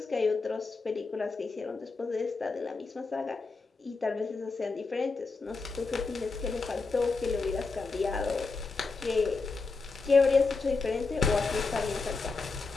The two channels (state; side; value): quieter; right; 4.1 dB